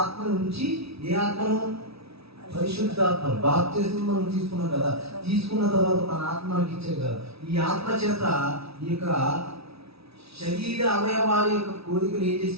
ఆత్మను ఉంచి, ఏ ఆత్మను? పరిశుద్ధాత్మ. బాప్తిస్మం మనం తీసుకున్నాం కదా, తీసుకున్న తర్వాత తన ఆత్మ మనకి ఇచ్చాడు కదా. ఈ ఆత్మ చేత ఈ యొక్క శరీర అవయవాల యొక్క కోరికలు ఏం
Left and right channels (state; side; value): late; left; 0.77 ms